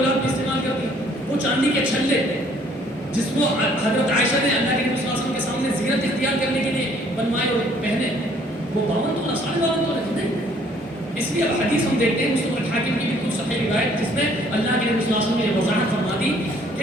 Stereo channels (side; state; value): both; normal; correlation 0.60